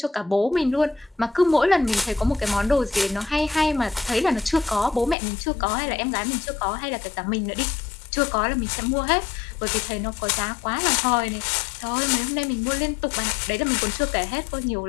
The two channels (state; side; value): drops out; right; at 5.2 s